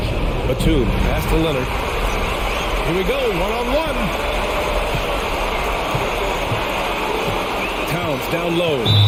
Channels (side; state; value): both; identical; correlation 1.00